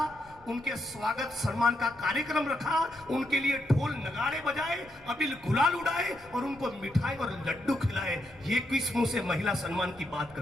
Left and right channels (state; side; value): noise; left; rumble, 25 dB below the sound